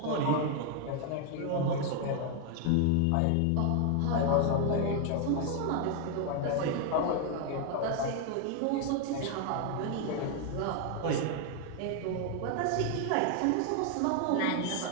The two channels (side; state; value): both; different; correlation 0.00